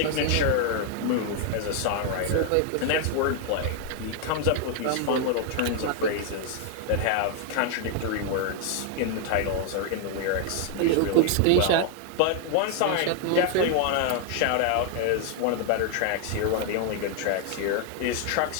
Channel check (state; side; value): different; both; correlation 0.00